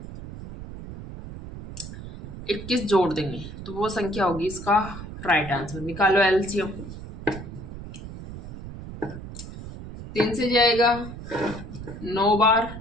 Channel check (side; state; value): right; noise; rumble, 11 dB below the sound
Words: 21 जोड़ देंगे, तो वो संख्या होगी इसका राइट आंसर। निकालो एलसीएम। 3 से जाएगा 9 बार,